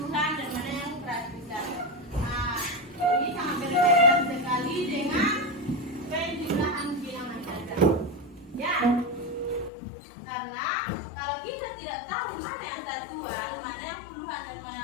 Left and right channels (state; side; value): drops out; right; at 9.7 s